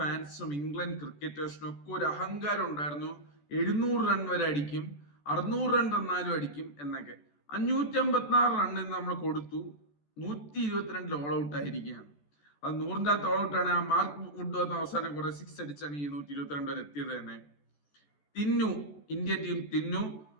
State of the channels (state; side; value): late; right; 14 ms